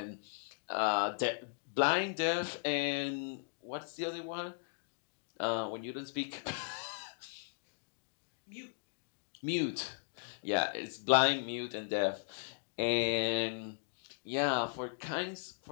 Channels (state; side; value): silent; right; digital silence